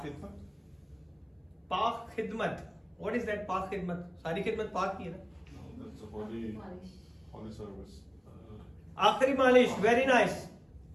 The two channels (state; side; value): identical; both; correlation 1.00